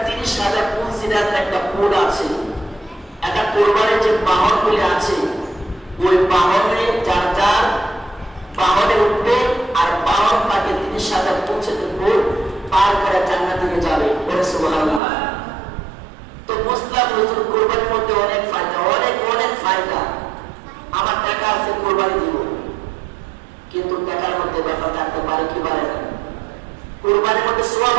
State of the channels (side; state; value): left; drops out; at 15.0 s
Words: 30,000 পুলসিরাতের একটা কোড আছে। একটা কোরবানির যে বাহনগুলি আছে, ওই বাহনে যার যার বাহনে উঠবে আর বাহন তাকে 30,000 পুলসিরাতের কোড পার করে জান্নাতে যাবে। বলে সুবহানাল্লাহ। তো মুসলিম হুজুর কোরবানির মধ্যে অনেক ফায়দা, অনেক অনেক ফায়দা। আমার টাকা আছে, কোরবানি দিব, কিন্তু টাকার মধ্যে ব্যাপার থাকতে পারে কি পারে না? কোরবানির মধ্যে সওয়াব